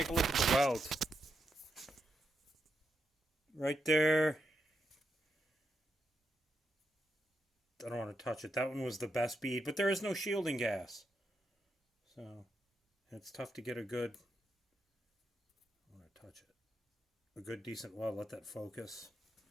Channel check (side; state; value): both; normal; correlation 0.84